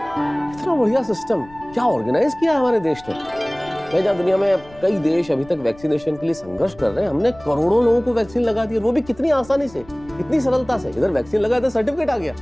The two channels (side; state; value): left; noise; rumble, 22 dB below the sound